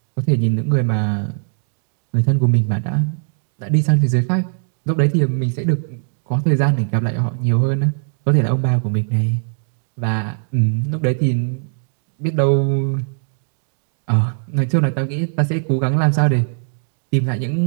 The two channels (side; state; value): left; silent; digital silence